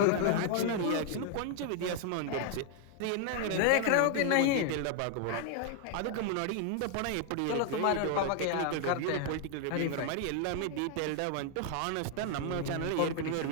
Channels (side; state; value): both; different; correlation 0.00